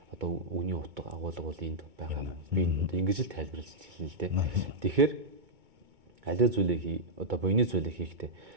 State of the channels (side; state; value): left; late; 2.2 ms